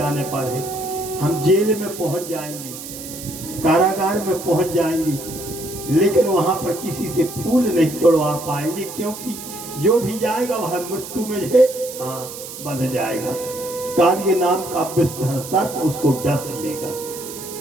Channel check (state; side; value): noise; right; hiss, 11 dB below the sound